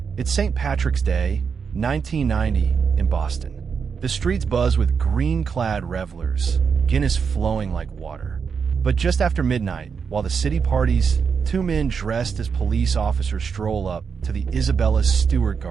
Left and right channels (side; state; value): left; quieter; 6.1 dB